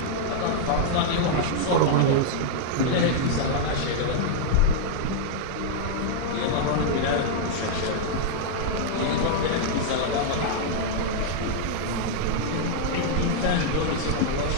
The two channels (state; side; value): different; both; correlation -0.01